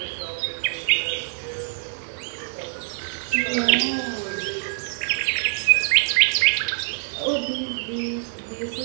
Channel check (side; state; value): left; silent; digital silence